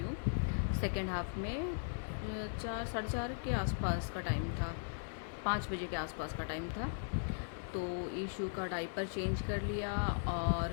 सेकेंड हाफ में 4 साढ़े 4 के आसपास का टाइम था, 5 बजे के आसपास का टाइम था। तो ईशू का डाइपर चेंज कर लिया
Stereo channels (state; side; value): silent; right; digital silence